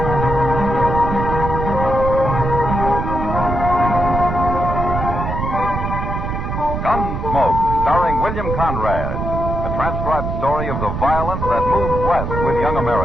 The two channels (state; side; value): noise; right; rumble, 3 dB below the sound